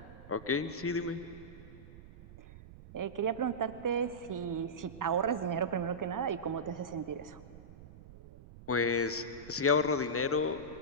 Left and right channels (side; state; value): right; noise; rumble, 17 dB below the sound